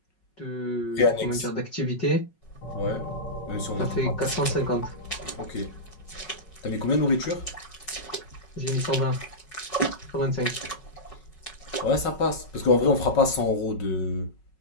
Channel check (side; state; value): right; late; 5.4 ms